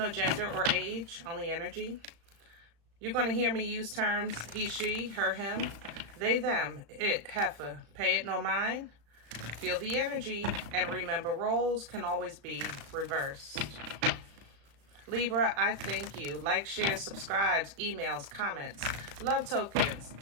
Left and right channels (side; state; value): left; late; 35 ms